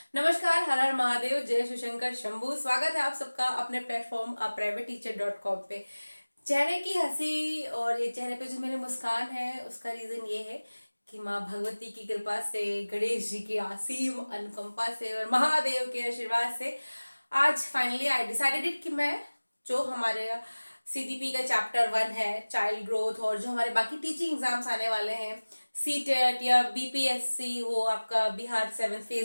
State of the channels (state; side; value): inverted; both; correlation -1.00